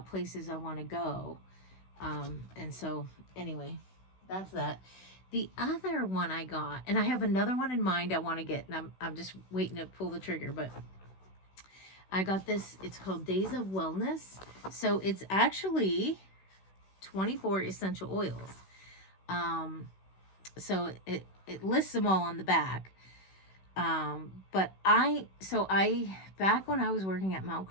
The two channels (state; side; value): late; right; 16 ms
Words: places I want to go. And so anyway, that's that. The other one I got, and I have another one in mind I want to get, and I'm just waiting to pull the trigger, but I got this. It's called Days of Wellness. So it's actually 24 essential oils. So it lists them all on the back. But back when I was working at Mount